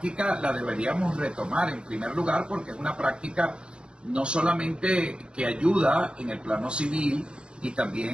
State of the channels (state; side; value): late; left; 0.054 ms